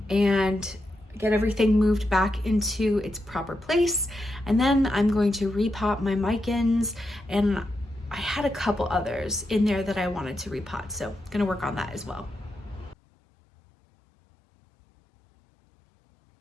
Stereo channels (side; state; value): both; normal; correlation 0.86